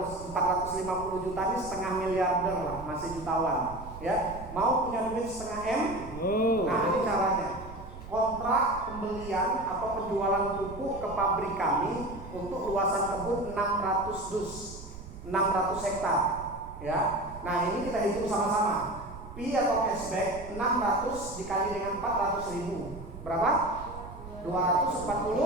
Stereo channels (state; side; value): noise; right; rumble, 13 dB below the sound